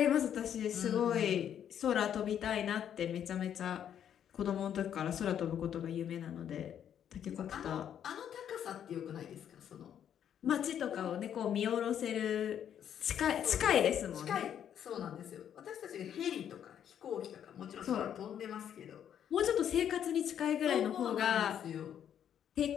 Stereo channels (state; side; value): quieter; right; 9.4 dB